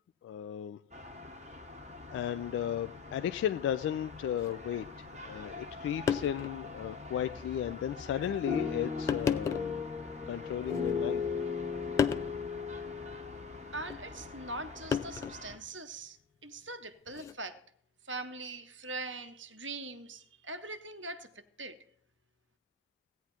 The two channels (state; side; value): quieter; right; 6.4 dB